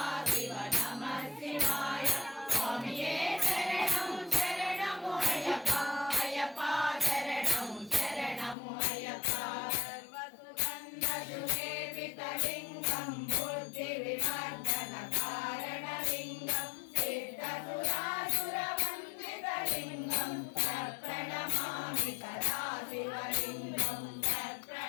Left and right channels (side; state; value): right; drops out; at 8.6 s